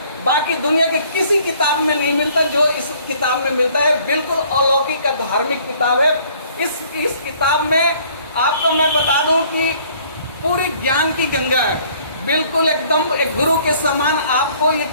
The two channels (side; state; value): both; inverted; correlation -0.59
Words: बाकी दुनिया के किसी किताब में नहीं मिलता जो इस किताब में मिलता है। बिल्कुल अलौकिक का धार्मिक किताब है। इस किताब में आपको मैं बता दूं कि पूरी ज्ञान की गंगा है, बिल्कुल एकदम एक गुरु के समान। आपको ये